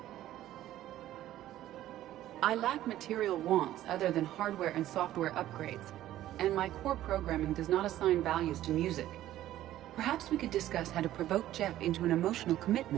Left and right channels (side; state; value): left; quieter; 13.6 dB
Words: I lack material wants other than hardware and software upgrades, and my core programming does not assign values to music. Perhaps we could discuss how to provoke Jeff into an emotional